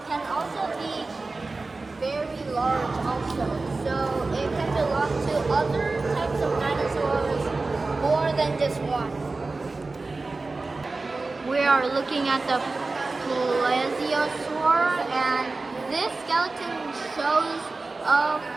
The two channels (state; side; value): quieter; left; 3.6 dB